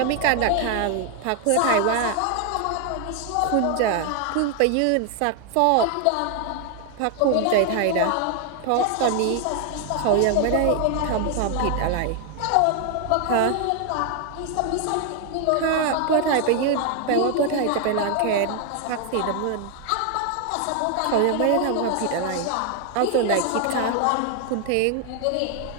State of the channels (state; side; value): different; both; correlation 0.00